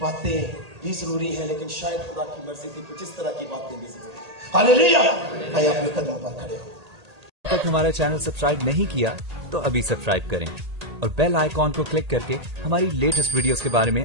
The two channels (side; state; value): left; late; 1.8 ms